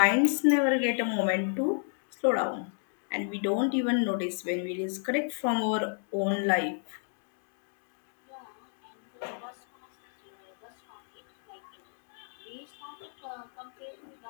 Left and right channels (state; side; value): silent; right; 57 dB below the other